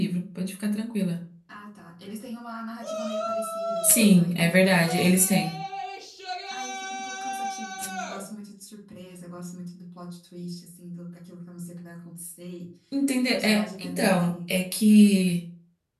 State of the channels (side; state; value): both; identical; correlation 1.00